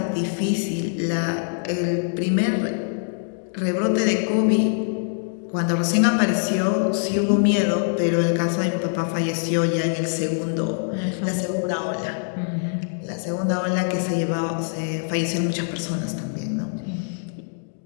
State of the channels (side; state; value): right; silent; digital silence